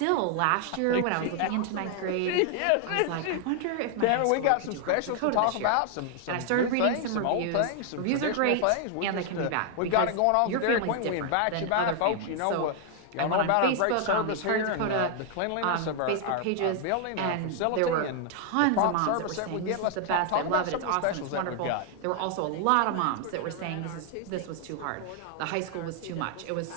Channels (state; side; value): different; both; correlation 0.00